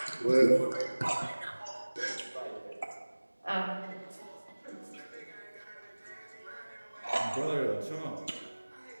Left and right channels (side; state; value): both; inverted; correlation -1.00